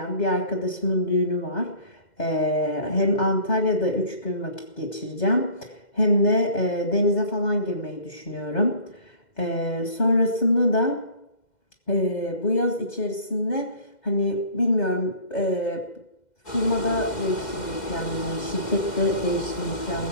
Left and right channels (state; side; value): late; right; 2.1 ms